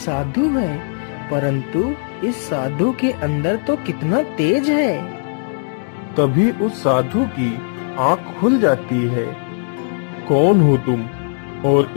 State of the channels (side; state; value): right; silent; digital silence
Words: है, परंतु इस साधु के अंदर तो कितना तेज है। तभी उस साधु की आंख खुल जाती है। कौन हो तुम और